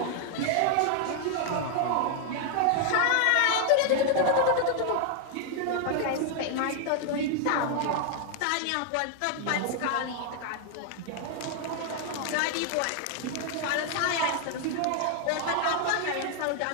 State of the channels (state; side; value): different; both; correlation 0.00